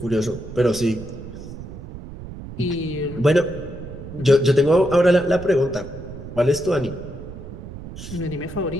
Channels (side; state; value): right; noise; rumble, 12 dB below the sound